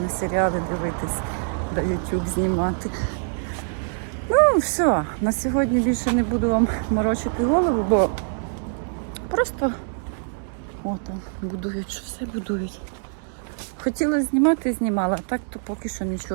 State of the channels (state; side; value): silent; left; 62 dB below the other